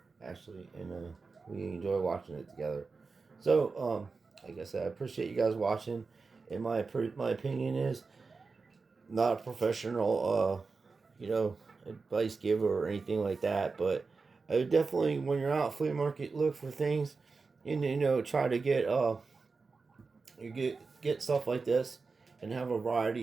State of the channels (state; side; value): quieter; left; 4.4 dB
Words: actually, and we enjoy watching it together. So, like I said, I appreciate you guys watching. And my opinion is not a professional, advice giver or anything like that. But I would definitely, when you're out flea market, look for things, and try to get stuff like this, and have a